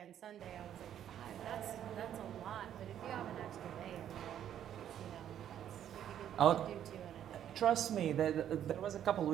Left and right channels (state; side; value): quieter; left; 10.3 dB